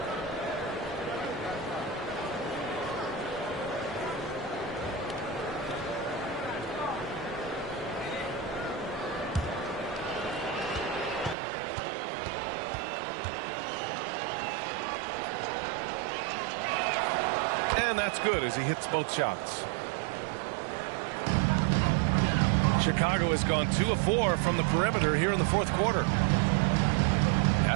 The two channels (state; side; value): drops out; left; at 11.4 s